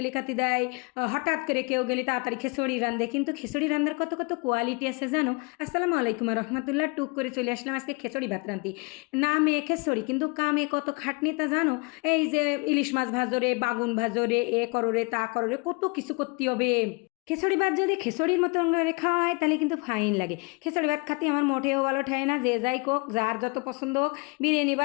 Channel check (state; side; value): quieter; right; 30.3 dB